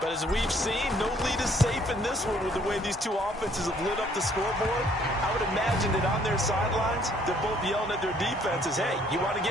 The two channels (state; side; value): normal; both; correlation 0.63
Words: as we've seen, no lead is safe in this one with the way these two offenses have lit up the scoreboard. I would imagine that on their sidelines, they're both yelling at their defenses, hey, you want to